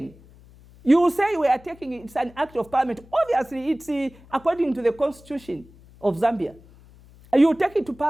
you will say we are taking it, it's an act of parliament. Obviously, it's according to the constitution of Zambia. You take it to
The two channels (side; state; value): left; noise; hum, 24 dB below the sound